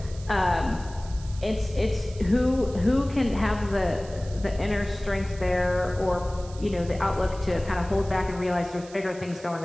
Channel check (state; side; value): noise; right; hiss, 20 dB below the sound